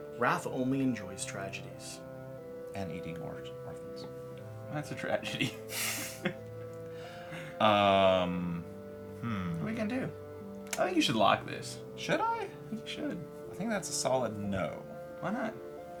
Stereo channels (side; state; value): both; identical; correlation 1.00